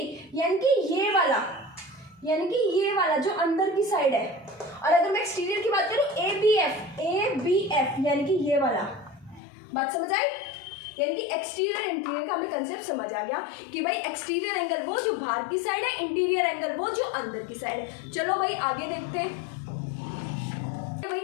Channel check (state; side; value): drops out; right; at 9.4 s